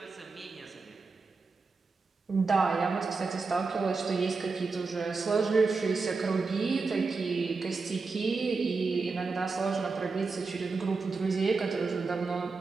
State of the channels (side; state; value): left; quieter; 4.3 dB